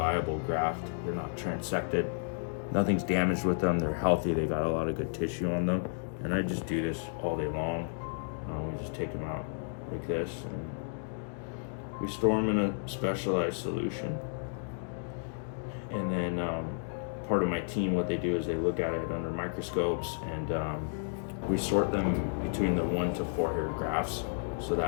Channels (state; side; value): silent; right; digital silence